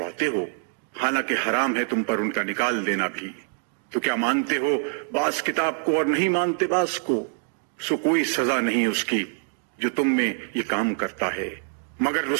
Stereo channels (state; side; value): silent; left; 62 dB below the other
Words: ہو، حالانکہ حرام ہے تم پر ان کا نکال دینا بھی۔ تو کیا مانتے ہو بعض کتاب کو اور نہیں مانتے بعض کو؟ سو کوئی سزا نہیں اس کی جو تم میں یہ کام کرتا ہے، مگر